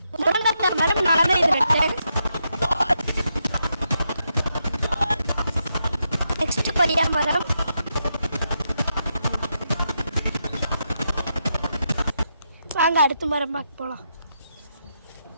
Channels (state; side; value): inverted; both; correlation -0.82